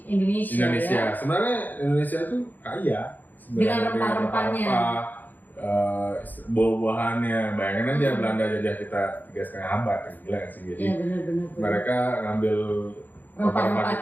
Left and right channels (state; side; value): late; right; 0.085 ms